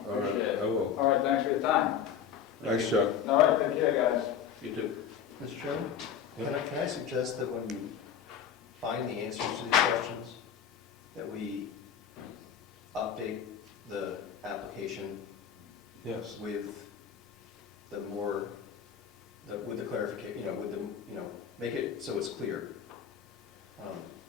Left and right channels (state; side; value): quieter; right; 8.2 dB